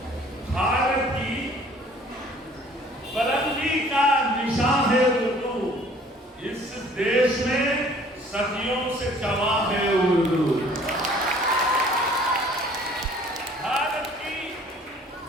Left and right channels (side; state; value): both; normal; correlation 0.54